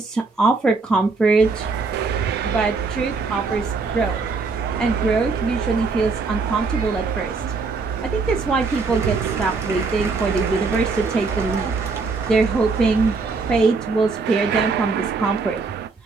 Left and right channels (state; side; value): quieter; left; 4.2 dB